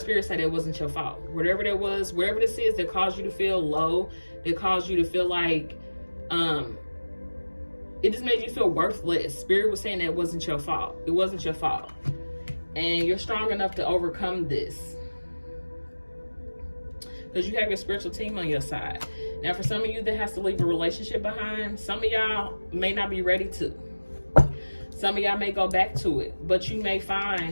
say that it wasn't your fault. Whatever that was, whatever this is that caused you to feel low, that caused you to feel like it just made you feel worthless. Spirit was saying that it wasn't your fault. It wasn't your fault. And you're strong enough to overcome this, because you have your spiritual team on your side. Now, for some of you that has to leave a relationship behind, some of y'all may not be ready to. Some of y'all may go back to it, but you may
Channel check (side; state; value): both; inverted; correlation -1.00